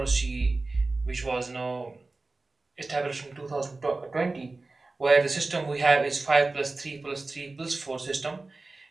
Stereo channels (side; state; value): left; quieter; 3.4 dB